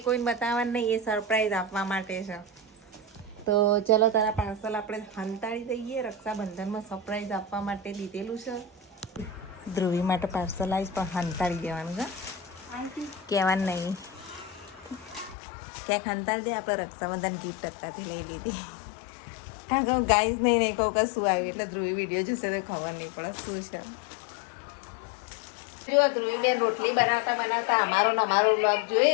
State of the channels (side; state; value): right; drops out; at 15.4 s